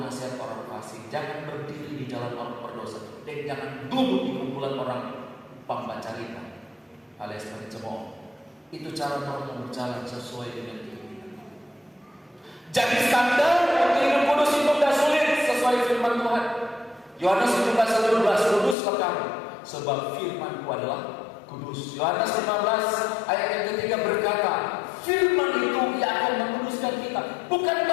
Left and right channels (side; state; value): right; drops out; at 18.8 s